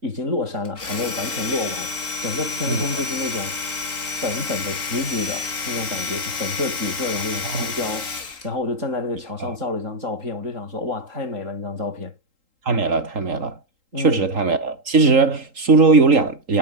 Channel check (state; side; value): late; left; 3.8 ms